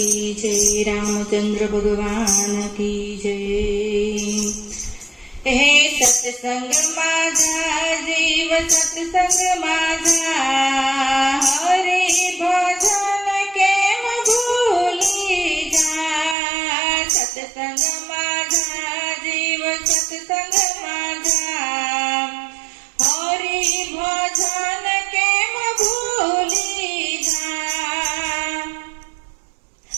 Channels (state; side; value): drops out; left; at 16.4 s